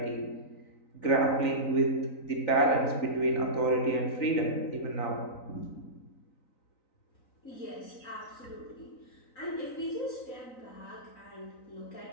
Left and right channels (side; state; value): right; late; 3.9 ms